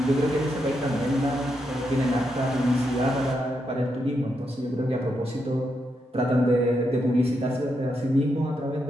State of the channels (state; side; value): normal; both; correlation 0.82